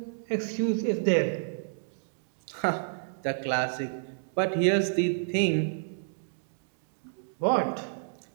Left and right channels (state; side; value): silent; left; digital silence